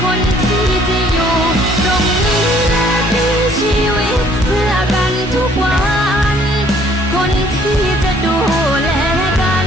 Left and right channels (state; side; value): normal; both; correlation 0.60